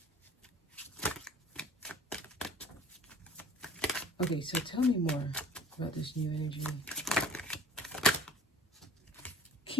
Okay, so tell me more about this new energy.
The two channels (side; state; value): both; normal; correlation 0.47